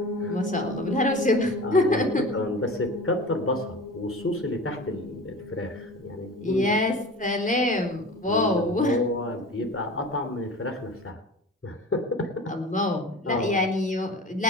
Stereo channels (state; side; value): normal; both; correlation 0.36